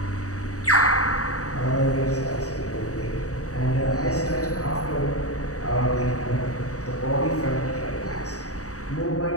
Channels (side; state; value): right; late; 0.66 ms